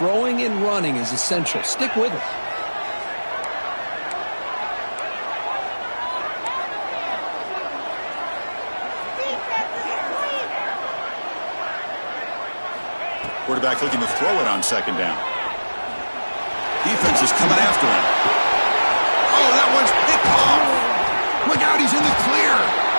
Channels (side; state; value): both; inverted; correlation -1.00